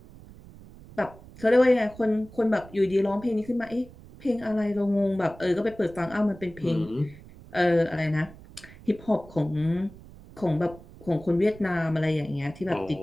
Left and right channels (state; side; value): noise; right; rumble, 20 dB below the sound